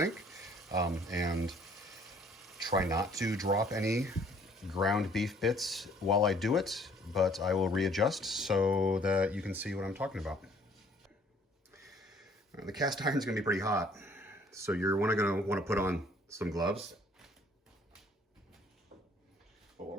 and try not to drop any ground beef bits while I do it, but I will readjust so that you can see what I'm talking about. The cast iron is going to be pretty hot, so you're going to want to put on some gloves. But what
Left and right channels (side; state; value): both; normal; correlation 0.59